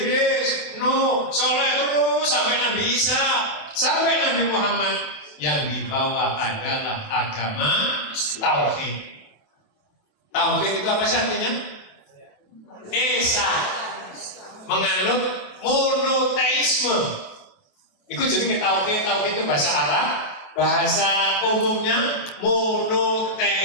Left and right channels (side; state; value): right; late; 28 ms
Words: Nuh, Soleh terus sampai Nabi Isa, sampai Nabi Muhammad, yang dibawa adalah agama tauhid. Tauhid itu apa sih artinya? Esa, menganut monoteisme. Itu jenenge tauhid. Tauhid itu bahasa Arab, bahasa umumnya